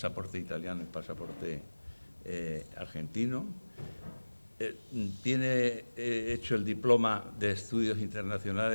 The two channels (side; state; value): both; inverted; correlation -1.00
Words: italiano y pasaporte argentino. Tiene hecho el diploma de Estudios